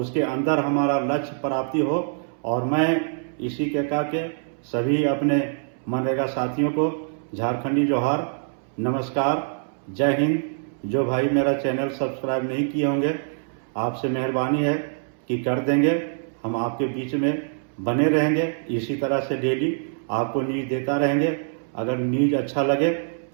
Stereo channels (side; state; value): left; silent; 62 dB below the other